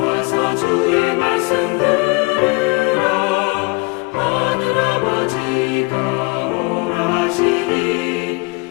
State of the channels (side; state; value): right; quieter; 28.9 dB